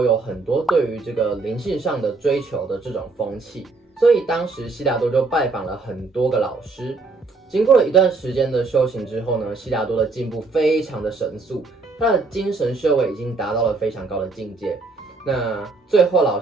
有很多对于这个灵性上的追求的这种风气，所以当时悉达多就拜访了很多个老师。经过了一段时间的修行之后呢，悉达多的进步非常的神速。他的精神修为已经达到了非常高的境界，那最后老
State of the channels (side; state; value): left; quieter; 3.8 dB